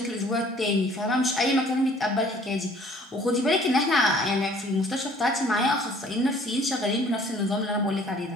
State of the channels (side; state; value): both; normal; correlation 0.55